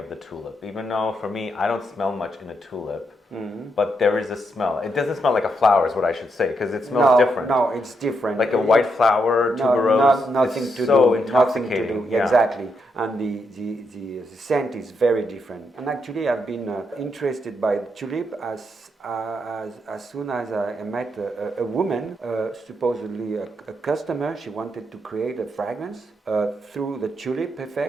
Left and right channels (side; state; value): both; normal; correlation 0.80